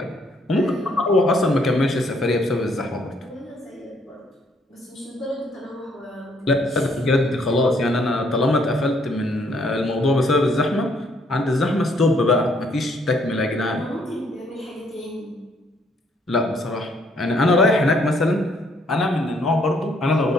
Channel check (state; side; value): normal; both; correlation 0.68